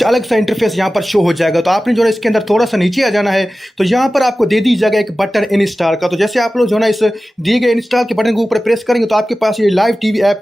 अलग सा इंटरफेस यहाँ पर शो हो जाएगा। तो आपने जो है इसके अंदर थोड़ा सा नीचे आ जाना है, तो यहाँ पर आपको दे दी जाएगा एक बटन इंस्टॉल का। तो जैसे आप लोग जो है ना इस दिए गए इंस्टॉल के बटन के ऊपर प्रेस करेंगे तो आपके पास ये लाइव टीवी ऐप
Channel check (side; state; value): both; normal; correlation 0.95